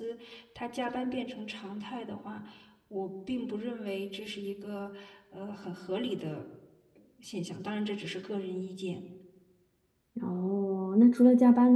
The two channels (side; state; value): both; identical; correlation 1.00